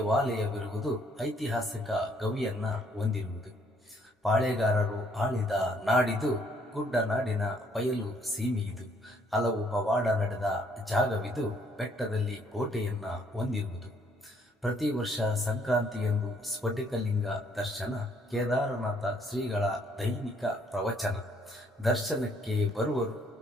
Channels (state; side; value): normal; both; correlation 0.66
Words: ಐತಿಹಾಸಿಕ ಗವಿಯನ್ನು ಹೊಂದಿರುವುದು. ಪಾಳೆಗಾರರು ಆಳಿದ ನಾಡಿದು. ಗುಡ್ಡನಾಡಿನ ಬಯಲು ಸೀಮೆಯಿದು. ಹಲವು ಪವಾಡ ನಡೆದ ಜಾಗವಿದು. ಬೆಟ್ಟದಲ್ಲಿ ಕೋಟೆಯನ್ನು ಹೊಂದಿರುವುದು. ಪ್ರತಿ ವರ್ಷ ಸಂಕ್ರಾಂತಿಯಂದು ಸ್ಫಟಿಕಲಿಂಗ ದರ್ಶನ. ಕೇದಾರನಾಥ ಶ್ರೀಗಳ ದೈನಿಕ ಪ್ರವಚನ. ದರ್ಶನಕ್ಕೆ ಬರುವರು